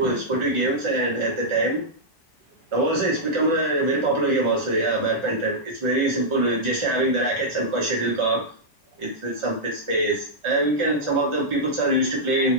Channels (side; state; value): both; normal; correlation -0.09